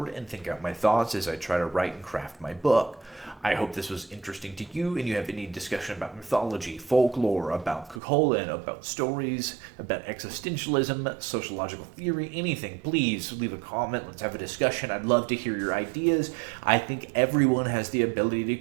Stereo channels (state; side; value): drops out; left; at 8.0 s